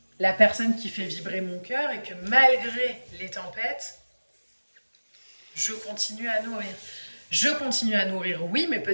la personne qui fait vibrer mon cœur et que malgré les tempêtes, je continue à nourrir. Je continue à nourrir, oui, mais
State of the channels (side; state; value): both; inverted; correlation -1.00